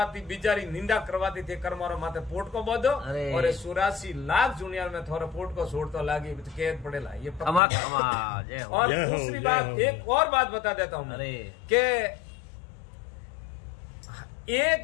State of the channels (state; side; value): drops out; right; at 7.6 s